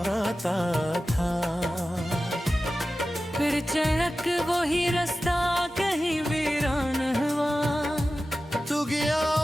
था। फिर चढ़क वही रास्ता कहीं वीरान हुआ, तू गया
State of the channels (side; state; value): both; normal; correlation 0.94